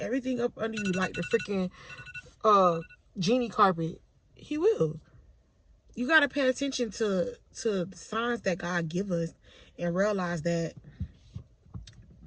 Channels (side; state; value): both; identical; correlation 1.00